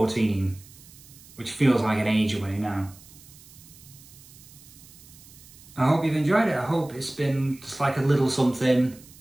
which feels like an age away now. I hope you've enjoyed it. I hope it's been just like a little something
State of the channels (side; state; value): right; noise; hiss, 22 dB below the sound